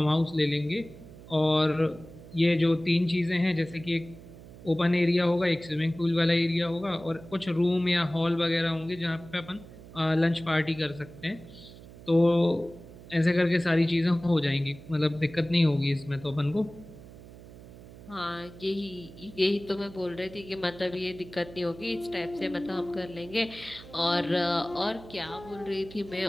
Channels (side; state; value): right; noise; hum, 18 dB below the sound